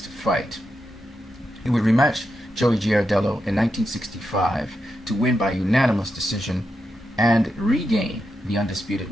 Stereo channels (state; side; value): normal; both; correlation 0.86